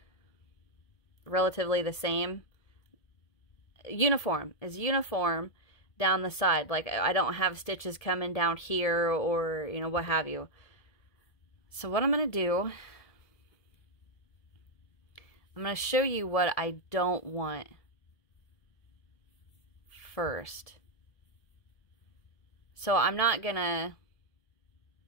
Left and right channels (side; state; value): right; late; 1.7 ms